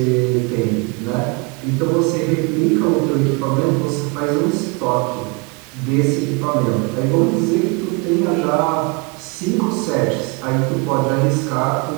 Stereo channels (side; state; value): left; quieter; 30.5 dB